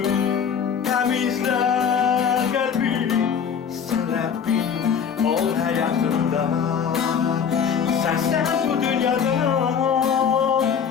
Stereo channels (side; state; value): right; quieter; 7.2 dB